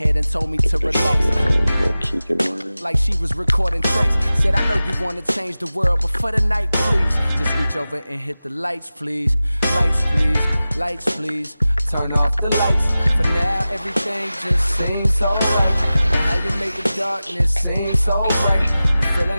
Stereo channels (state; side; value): inverted; both; correlation -0.96